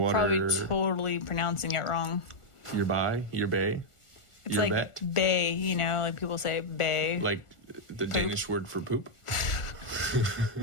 Probably totally pronouncing it wrong. Yerba. It's Yerbat? like bay, you know, like people say bay. Like the Poop. Danish word for poop.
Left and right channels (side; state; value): right; late; 1.4 ms